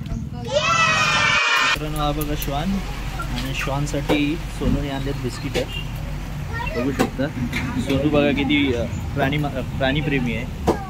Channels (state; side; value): identical; both; correlation 1.00